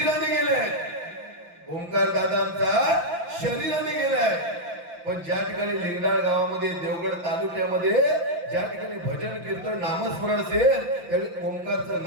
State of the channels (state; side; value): late; left; 5.8 ms